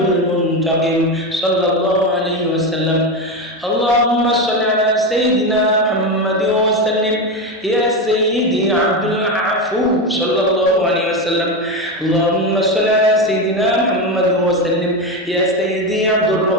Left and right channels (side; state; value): both; normal; correlation 0.15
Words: المنتقم صلى الله عليه وسلم اللهم صل على سيدنا محمد وسلم يا سيدي عبد العفو صلى الله عليه وسلم اللهم صل على سيدنا محمد وسلم يا سيدي عبد